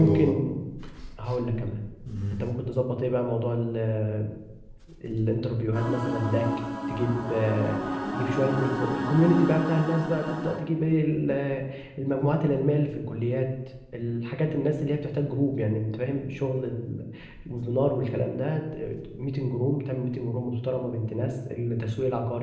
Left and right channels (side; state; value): both; identical; correlation 1.00